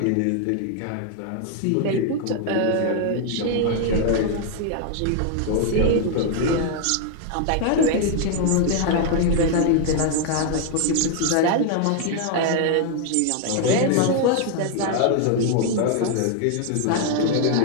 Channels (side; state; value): both; different; correlation 0.00